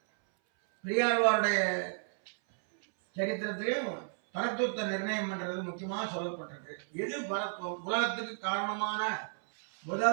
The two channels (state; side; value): silent; left; 56 dB below the other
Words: பெரியாழ்வாருடைய சரித்திரத்திலையும் பரத்துவத்தை நிர்ணயம் பண்றது முக்கியமாக சொல்லப்பட்டிருக்கு. எது பரத்துவம்? உலகத்துக்கு காரணமான